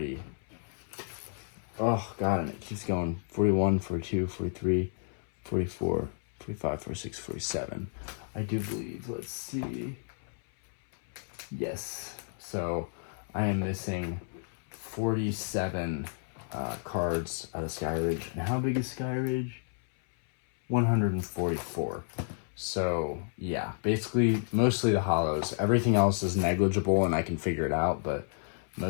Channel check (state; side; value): silent; right; 57 dB below the other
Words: Oh god, and it keeps going. 41, 42, 43, 44, 45, 46, 47. I do believe. Let's see. Yes. So I am missing 47 cards out of Skyridge. And how big is Skyridge? 144. So yeah, basically mostly the holos. Everything else is negligible and I can figure it out, but